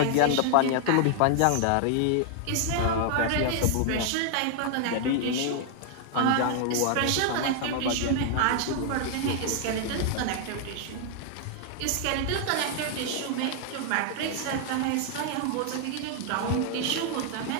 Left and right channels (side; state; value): both; different; correlation 0.00